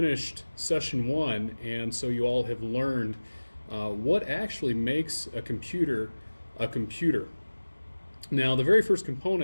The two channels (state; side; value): inverted; both; correlation -1.00